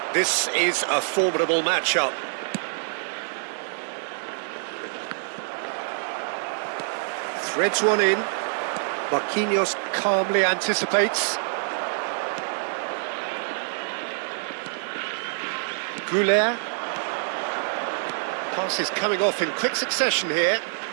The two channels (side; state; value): left; silent; digital silence